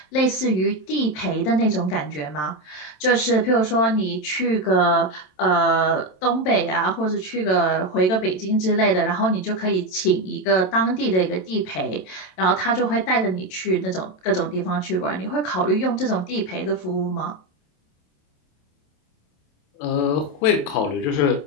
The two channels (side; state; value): right; late; 27 ms